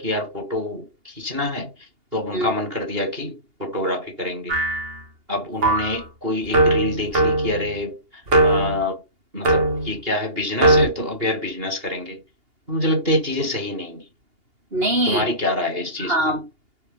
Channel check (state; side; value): late; left; 2.8 ms